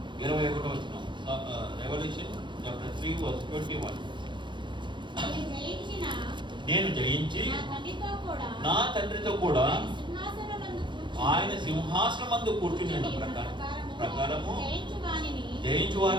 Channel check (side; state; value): left; late; 0.23 ms